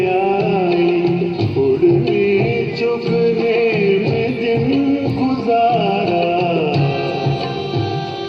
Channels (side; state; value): both; identical; correlation 1.00